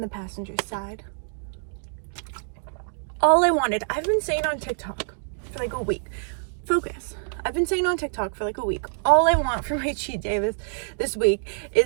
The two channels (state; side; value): silent; left; digital silence